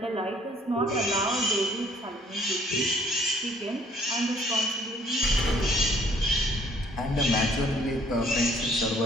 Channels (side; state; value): both; normal; correlation 0.60